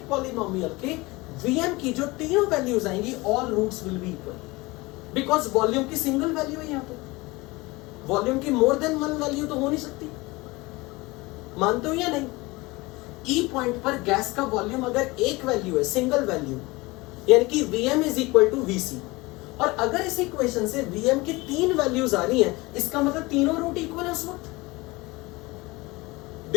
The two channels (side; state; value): right; quieter; 22.6 dB